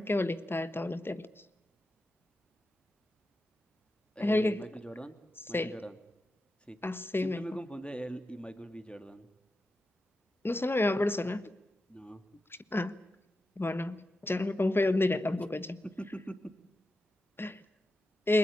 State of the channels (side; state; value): both; normal; correlation 0.89